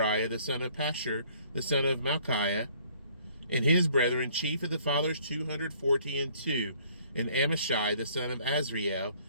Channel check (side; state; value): both; inverted; correlation -0.59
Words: the son of Pashur, the son of Malchiah, and his brethren, chief of the fathers, 242. And Amashai, the son of Azriel,